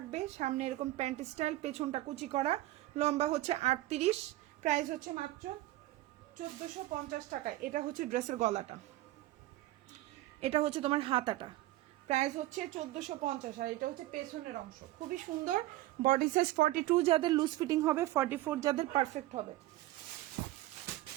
সামনে এরকম প্যান্ট স্টাইল, পেছনটা কুচি করা, লম্বা হচ্ছে 38, প্রাইস হচ্ছে মাত্র 1450 টাকা। এটা হচ্ছে ড্রেসের গলাটা, এটা হচ্ছে তোমার হাতাটা, প্রাইস হচ্ছে 1450। আর এটা হচ্ছে পেছনের অংশ, খুবই সুন্দর। বডি সাইজ 42 যাদের লুজ ফিটিং হবে, 44 যাদের পারফেক্ট হবে।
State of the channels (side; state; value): left; quieter; 16.6 dB